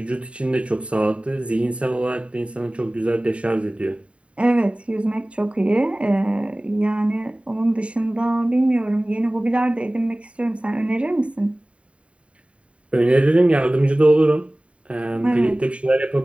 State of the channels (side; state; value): left; late; 0.062 ms